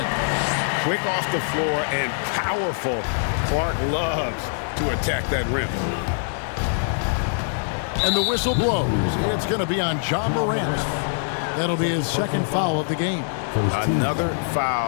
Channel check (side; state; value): right; silent; digital silence